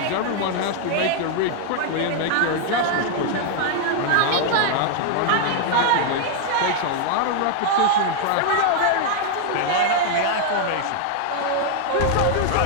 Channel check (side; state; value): both; different; correlation 0.00